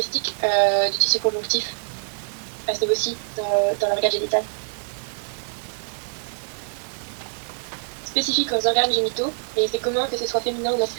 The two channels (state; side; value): silent; left; digital silence